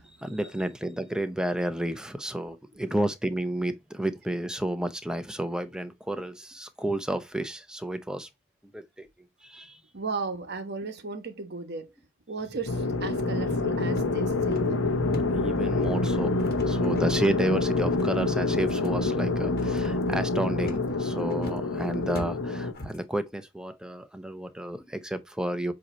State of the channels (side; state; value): both; normal; correlation 0.47